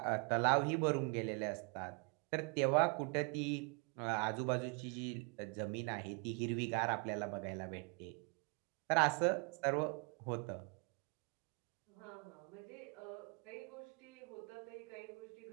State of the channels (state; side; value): quieter; left; 33.7 dB